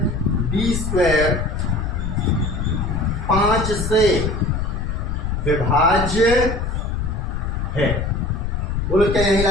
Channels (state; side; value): noise; left; rumble, 2 dB below the sound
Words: बी स्क्वायर 5 से विभाज्य है। बोलो क्या यही